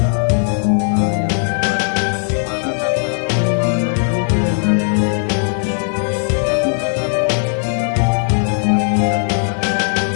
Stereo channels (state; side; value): silent; right; 61 dB below the other